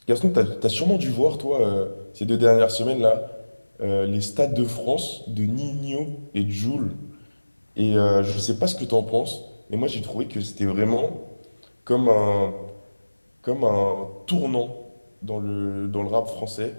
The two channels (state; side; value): inverted; both; correlation -1.00